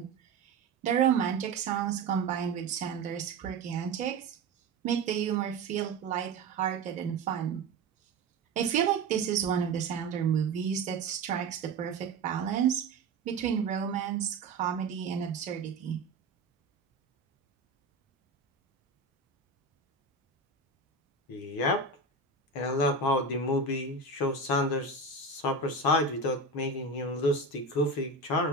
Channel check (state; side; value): quieter; left; 3.6 dB